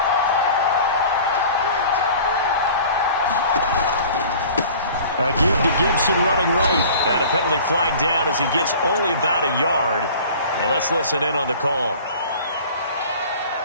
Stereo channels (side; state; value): both; inverted; correlation -0.44